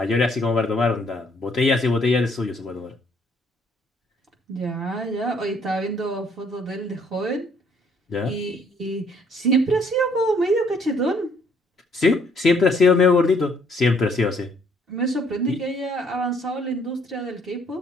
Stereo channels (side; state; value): both; normal; correlation 0.65